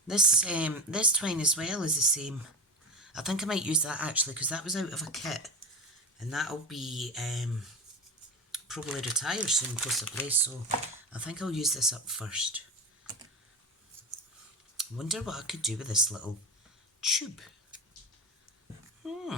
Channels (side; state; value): both; normal; correlation 0.22